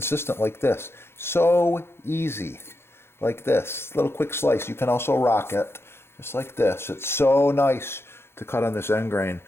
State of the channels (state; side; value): late; right; 0.12 ms